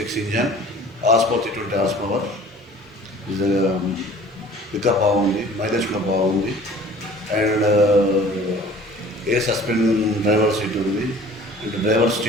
engine, horse power 320 horse power. Pickup బాగుంది. మైలేజ్ కూడా బాగుంది. And air suspend driver seat ఉంది. And driver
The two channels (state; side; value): normal; both; correlation 0.48